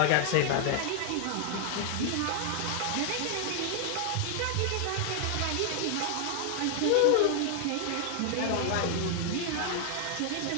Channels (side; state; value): both; different; correlation 0.00